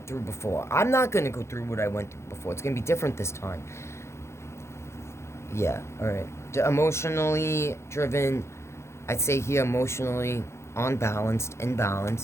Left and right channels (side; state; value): right; late; 0.13 ms